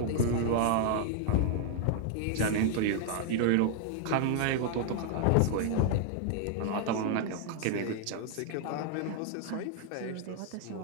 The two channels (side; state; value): both; different; correlation 0.00